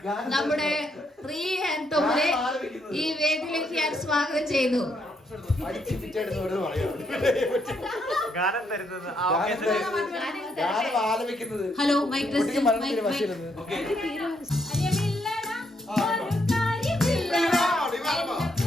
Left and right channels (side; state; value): both; normal; correlation 0.75